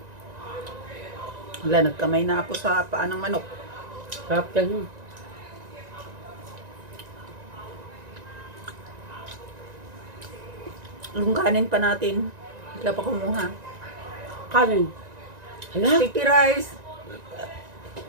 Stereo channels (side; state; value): left; late; 1.9 ms